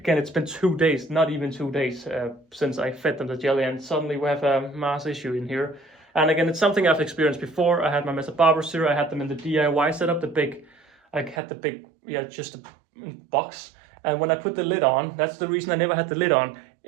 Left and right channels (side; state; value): left; drops out; at 11.4 s